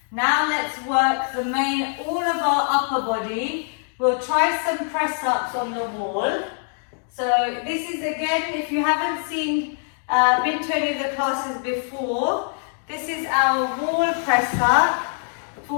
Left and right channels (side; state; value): right; silent; 56 dB below the other